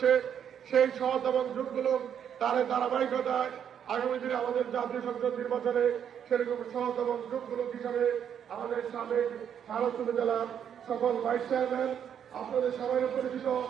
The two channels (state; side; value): quieter; left; 8.7 dB